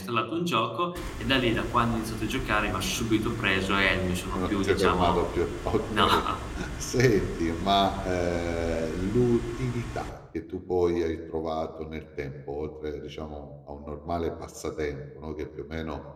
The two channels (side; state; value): both; identical; correlation 1.00